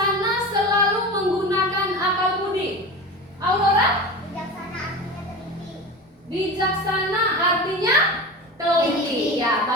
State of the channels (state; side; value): normal; both; correlation 0.29